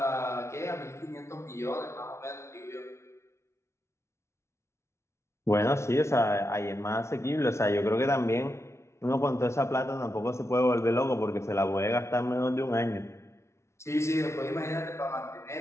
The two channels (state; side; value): late; right; 0.13 ms